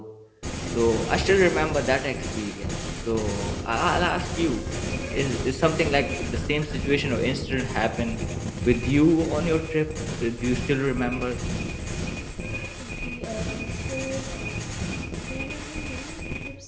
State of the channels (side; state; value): both; identical; correlation 1.00